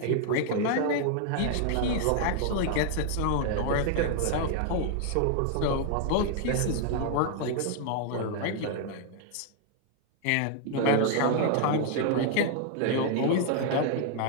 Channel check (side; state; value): both; different; correlation 0.00